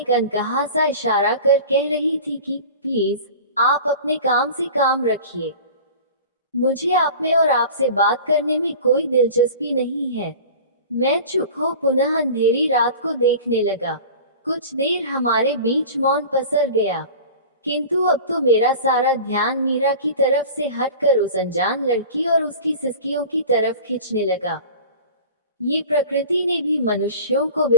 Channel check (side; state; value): both; inverted; correlation -0.38